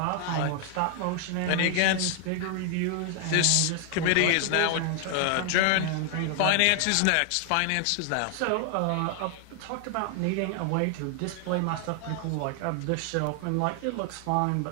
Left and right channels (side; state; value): both; different; correlation 0.00